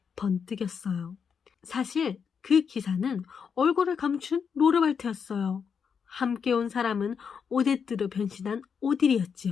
번뜩였어요. 사실 그 기사는 얼굴을 감춘 로르발트였어요. 함께 온 사람은 오데트로 변신한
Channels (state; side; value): quieter; right; 6.6 dB